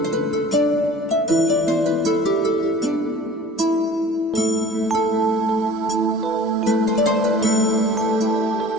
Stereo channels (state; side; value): normal; both; correlation 0.45